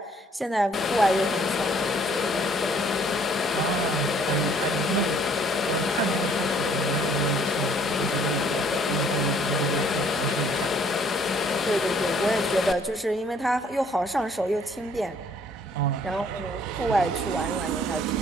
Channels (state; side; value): normal; both; correlation 0.61